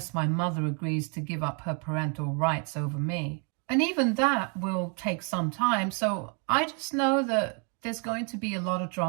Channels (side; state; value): left; quieter; 37.6 dB